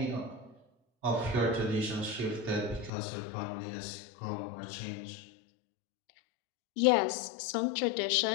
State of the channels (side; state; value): right; drops out; at 2.9 s